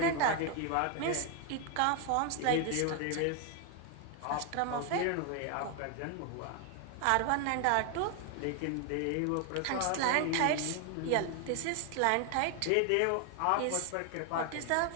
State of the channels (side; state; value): both; different; correlation 0.01